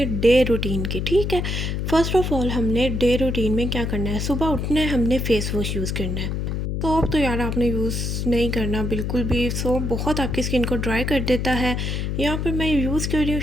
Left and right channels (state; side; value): noise; left; hum, 1 dB below the sound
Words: डे रूटीन की। ठीक है, फर्स्ट ऑफ ऑल हमने डे रूटीन में क्या करना है, सुबह उठना है, हमने फेस वॉश यूज़ करना है। सोप तो यार आपने यूज़ नहीं करना बिल्कुल भी, सोप बहुत आपकी स्किन को ड्राई कर देता है। यहाँ पर मैं यूज़ कर रही हूँ